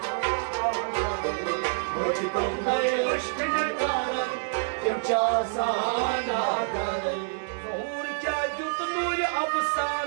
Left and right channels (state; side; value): silent; left; digital silence